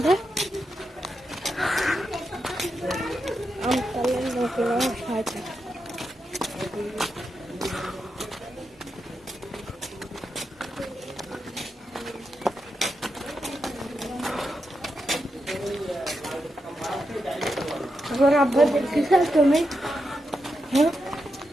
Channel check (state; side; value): normal; both; correlation 0.86